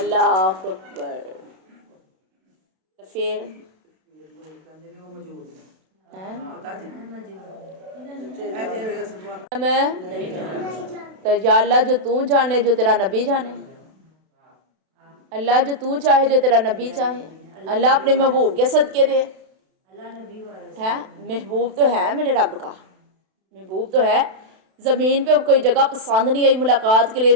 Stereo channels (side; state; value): left; late; 32 ms